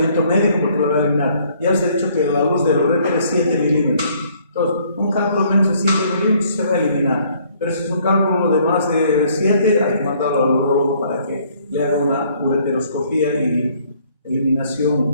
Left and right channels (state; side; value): inverted; both; correlation -0.63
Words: médico porque lo va a eliminar. Ya les he dicho que la luz del uréter es 7 milímetros. Entonces, un cálculo menos de 7 milímetros se va a eliminar. Pero si es un cálculo de más de 7, hay que mandarlo al urólogo para que le haga una ureteroscopía y